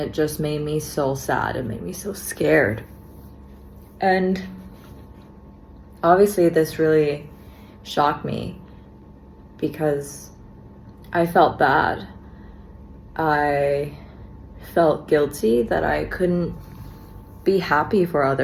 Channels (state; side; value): identical; both; correlation 1.00